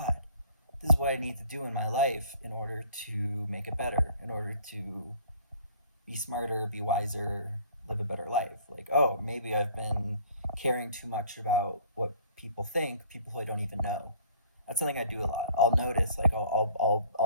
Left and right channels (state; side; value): inverted; both; correlation -0.53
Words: this is what I need to do in my life in order to make it better, in order to be smarter, be wiser, live a better life. Like, oh, maybe I've been caring too much about what people think, people who I don't even know. That's something I do a lot. I'll notice, like,